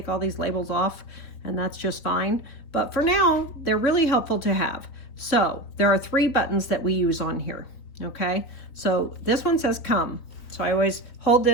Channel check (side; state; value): right; late; 3.9 ms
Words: all these labels off, and that's just fine. But for now, they're really helpful to have. So there are 3 buttons that we use on here, okay? So this one says come. So I always hold